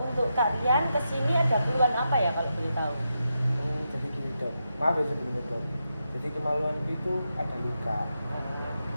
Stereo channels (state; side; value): inverted; both; correlation -0.86